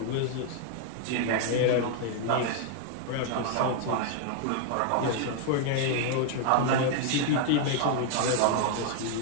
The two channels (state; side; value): different; both; correlation 0.00